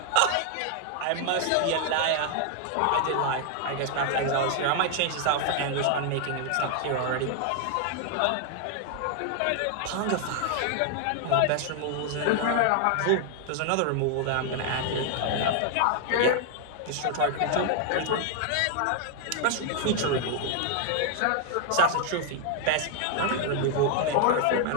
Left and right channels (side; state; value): both; different; correlation 0.00